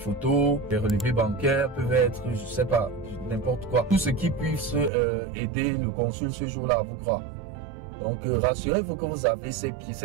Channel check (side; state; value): left; drops out; at 4.9 s